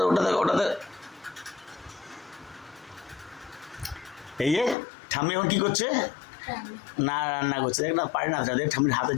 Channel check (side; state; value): right; drops out; at 4.8 s